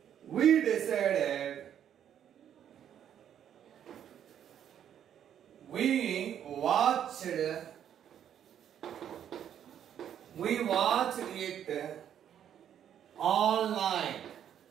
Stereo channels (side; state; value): left; quieter; 9.6 dB